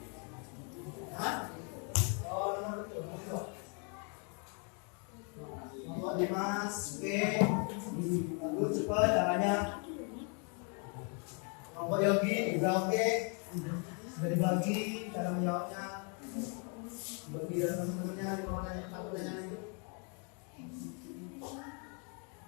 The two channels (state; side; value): quieter; right; 38.2 dB